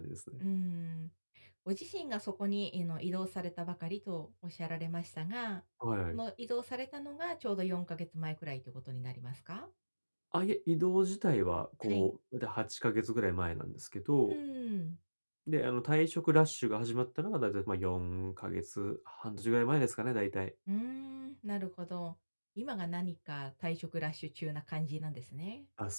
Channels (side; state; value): both; inverted; correlation -1.00